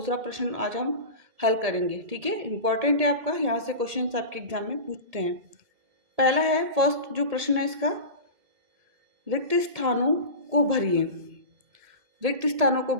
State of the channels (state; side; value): late; left; 1.7 ms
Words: प्रश्न आज हम हल करेंगे। ठीक है, इंपॉर्टेंट है आपका, यहाँ से क्वेश्चन आपके एग्जाम में पूछते हैं। पहला है, फर्स्ट जो प्रश्न है इसका, रिक्त स्थानों को भरिए। रिक्त स्थानों को